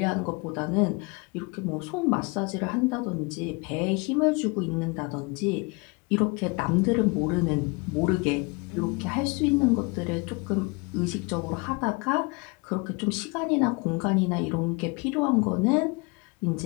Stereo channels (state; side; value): quieter; right; 29.2 dB